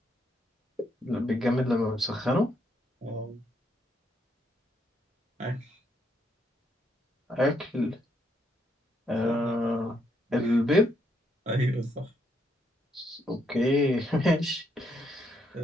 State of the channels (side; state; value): both; normal; correlation 0.75